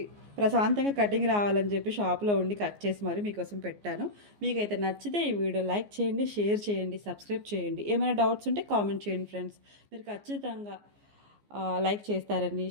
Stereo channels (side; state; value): left; late; 14 ms